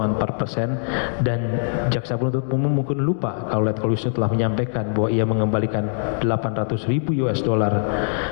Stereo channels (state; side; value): silent; right; digital silence